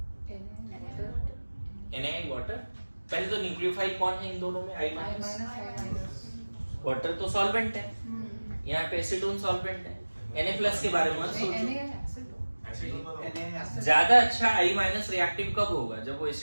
NaI water. पहले तो न्यूक्लियोफाइल कौन है इन दोनों में? I minus. वाटर तो सॉल्वेंट है, यहाँ पे एसीटोन सॉल्वेंट है। Na+ के बारे में मत सोचो। एसीटोन वाला ज्यादा अच्छा I माइनस रिएक्टिव कब होगा? जब वो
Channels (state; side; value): inverted; both; correlation -1.00